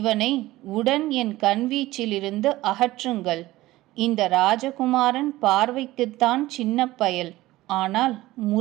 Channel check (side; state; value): left; quieter; 17.4 dB